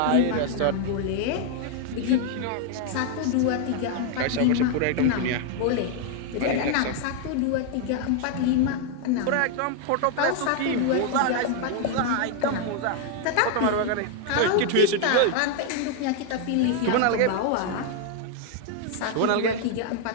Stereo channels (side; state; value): both; different; correlation 0.00